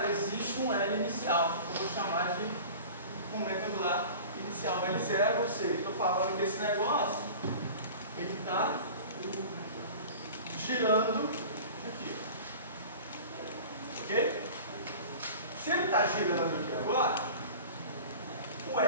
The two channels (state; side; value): inverted; both; correlation -0.39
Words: existe um L inicial. Eu vou chamar de momento angular inicial L0, ou seja, estou falando que esse negócio ele está girando aqui. Ok? Se ele está girando aqui agora, o